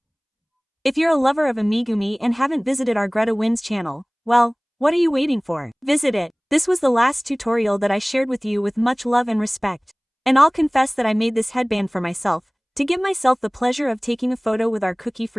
If you're a lover of Amigurumi and haven't visited our GretaWings channel, well, what are you waiting for? Visit it. This was the last tutorial that I shared with you with much love and respect. And I'll confess that I made this headband for myself, to give myself the pleasure of taking a photo with our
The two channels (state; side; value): identical; both; correlation 1.00